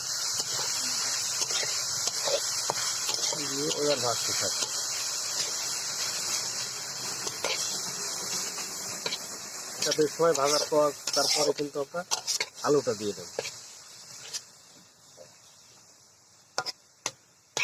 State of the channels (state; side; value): identical; both; correlation 1.00